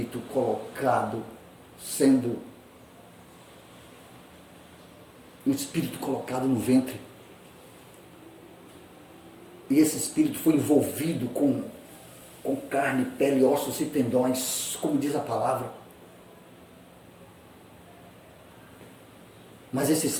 colocado, um espírito colocado no ventre. E esse espírito foi envolvido com carne, pele, ossos e tendões, como diz a palavra. Mas esse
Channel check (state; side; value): identical; both; correlation 1.00